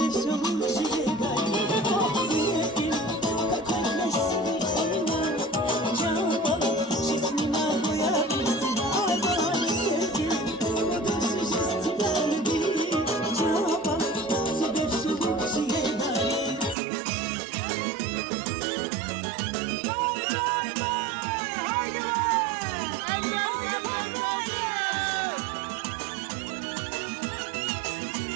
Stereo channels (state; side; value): drops out; left; at 16.8 s